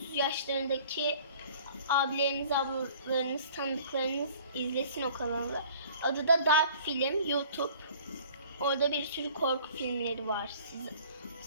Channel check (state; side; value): inverted; both; correlation -0.51